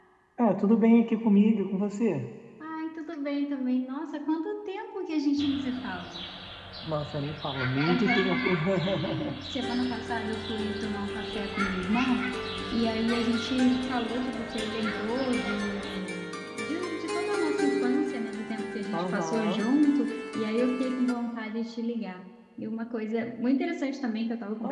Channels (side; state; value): both; identical; correlation 1.00